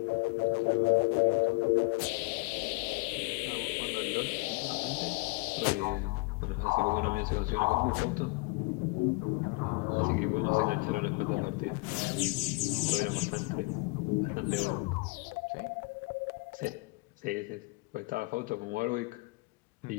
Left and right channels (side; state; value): right; quieter; 27.7 dB